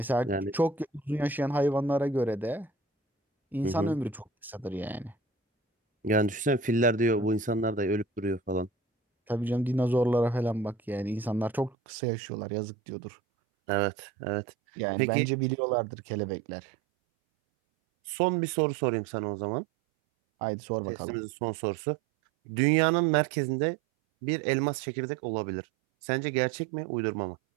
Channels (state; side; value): drops out; left; at 11.8 s